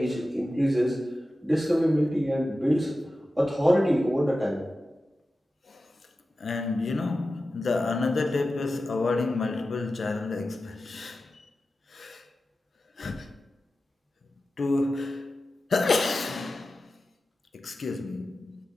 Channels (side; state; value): both; normal; correlation 0.93